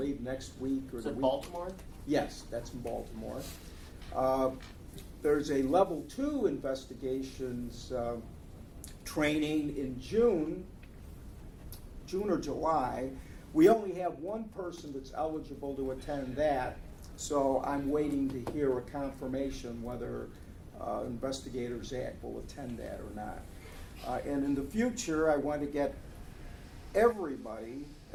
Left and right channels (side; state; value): both; identical; correlation 1.00